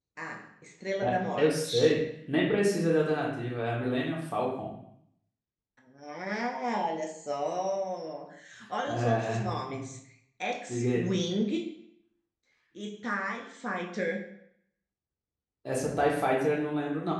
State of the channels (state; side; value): identical; both; correlation 1.00